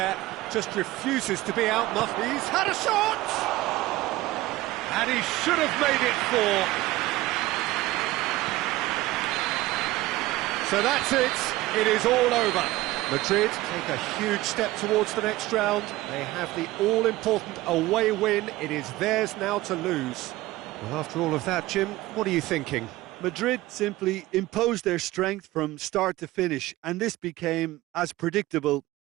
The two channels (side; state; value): left; quieter; 17.9 dB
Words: Just refuses to be outmuscled. He's had a shot! And he should have made it 4. So that's it, it is all over. Madrid take a huge step towards the next round. They have the all-important away win. It is theirs now to lose. Well, after all of that, Jim, what are you thinking? Madrid simply imposed their strength from start to finish, and this became as predictable